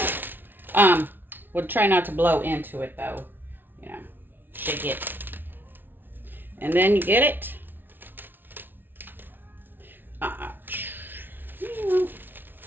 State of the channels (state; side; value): late; left; 0.096 ms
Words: We'll try not to blow into it though. You know, shake it. And then you get it.